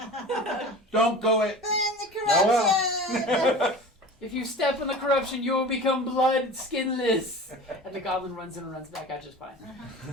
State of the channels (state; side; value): normal; both; correlation 0.37